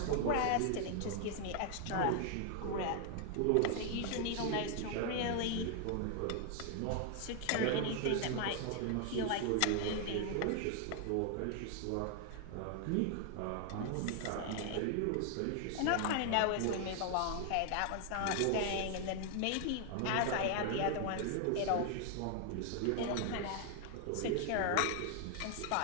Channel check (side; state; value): both; different; correlation 0.00